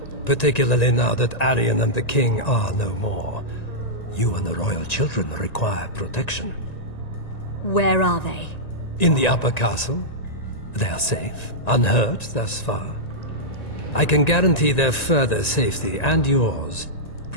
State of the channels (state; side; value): late; right; 1.9 ms